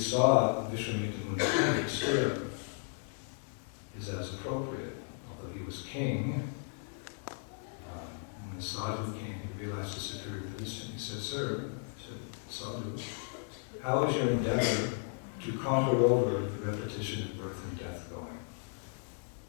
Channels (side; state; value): right; silent; 55 dB below the other